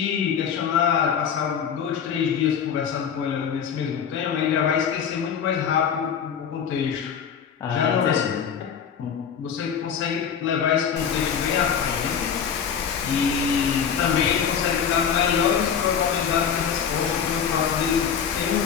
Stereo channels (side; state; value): right; quieter; 7.5 dB